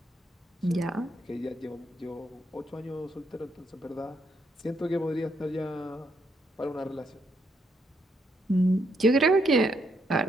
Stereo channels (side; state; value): both; normal; correlation 0.76